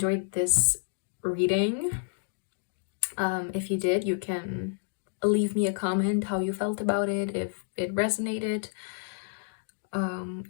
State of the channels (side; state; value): right; silent; digital silence